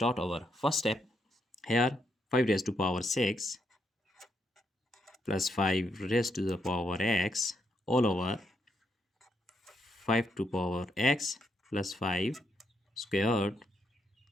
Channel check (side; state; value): both; normal; correlation 0.79